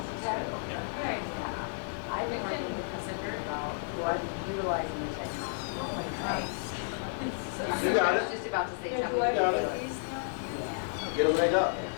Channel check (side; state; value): right; silent; 56 dB below the other